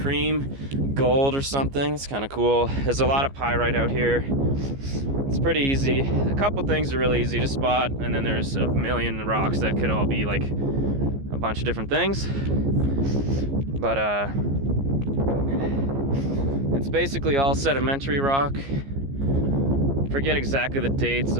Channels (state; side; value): late; left; 15 ms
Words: cream, gold or something. It's kind of cool. There's a lot of pyrite out here. It's pretty easy. A couple things are really easy to spot, and then there's a million rocks that could all be like a bunch of different things. But it's basically all sedimentary rock. Forget exactly the dates